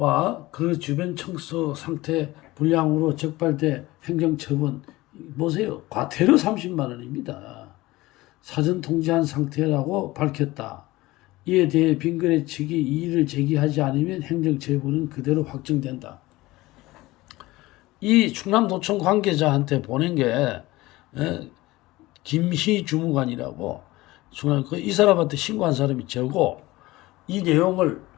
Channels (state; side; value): quieter; right; 19.2 dB